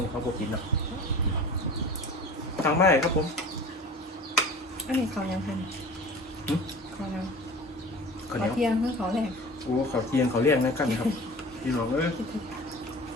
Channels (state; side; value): normal; both; correlation 0.40